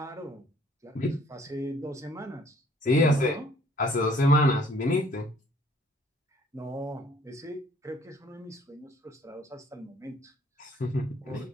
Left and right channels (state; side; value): normal; both; correlation 0.59